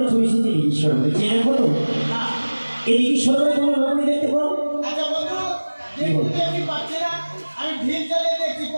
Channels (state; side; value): inverted; both; correlation -1.00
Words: চলেছি যে ঈশ্বর চেনে বলো এই ঈশ্বরের কোনো রকমই দেখতে পাও আমি ঢিল চালিয়ে দেখছি